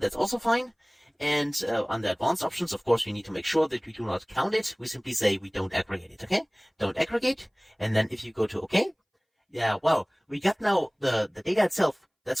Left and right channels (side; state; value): both; identical; correlation 1.00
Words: also fine. And under advanced options, of course, we need to make sure that we do not count it. We simply say we don't aggregate it, okay? Don't aggregate, and then if you go to OK, yeah, well, we got now the data itself. That's